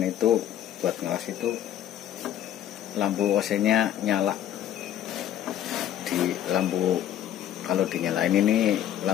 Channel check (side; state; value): right; quieter; 11.3 dB